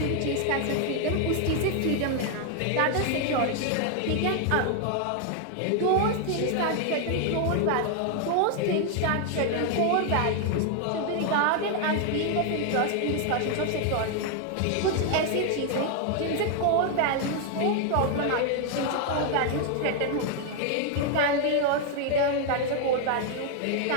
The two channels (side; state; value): both; different; correlation 0.00